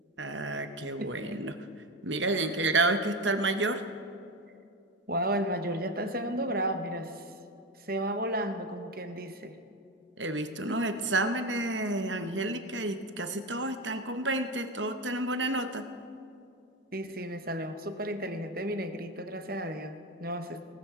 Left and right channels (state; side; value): normal; both; correlation 0.18